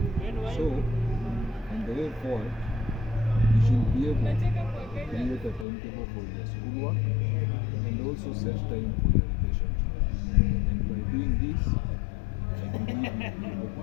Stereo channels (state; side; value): drops out; right; at 5.7 s